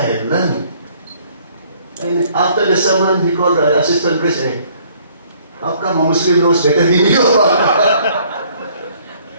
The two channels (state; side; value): inverted; both; correlation -0.61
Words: learned. And after the sermon, he called the assistant priest, hey, how come a Muslim knows better than you?